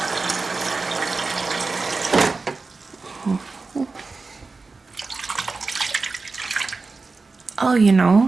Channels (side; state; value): left; quieter; 4.0 dB